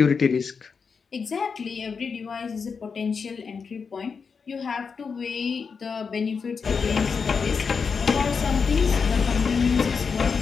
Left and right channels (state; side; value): quieter; right; 5.6 dB